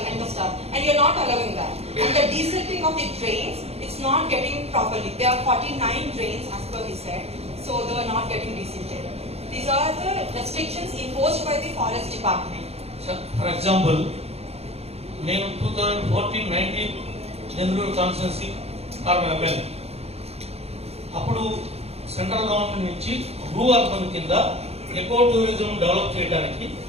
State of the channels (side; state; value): left; late; 0.30 ms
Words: and the stuff, and you're not allowing that. And the desilting of the drains, it's not getting properly. There are 49 drains as per he said, so they are not getting desilted. These are the restrictions imposed by the forest department. For example, నేను 2014-19 Denduluru constituency corporation అప్పుడు central government నుంచి blue urban కింద eco tourism develop చేయడానికి